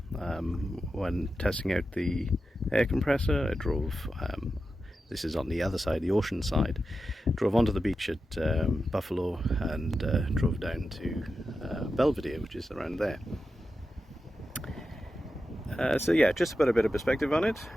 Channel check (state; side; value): normal; both; correlation 0.91